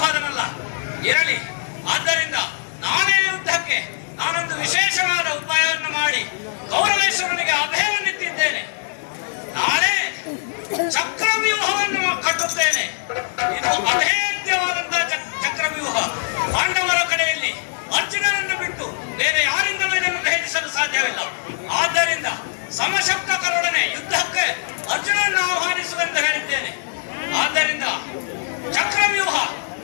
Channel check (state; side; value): silent; right; digital silence